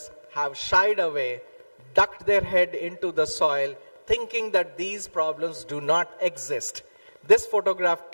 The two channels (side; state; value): both; inverted; correlation -1.00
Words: have shied away, ducked their head into the soil, thinking that these problems do not exist. This photograph